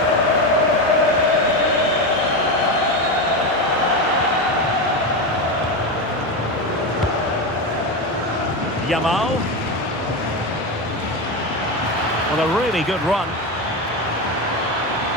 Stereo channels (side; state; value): right; noise; hum, 25 dB below the sound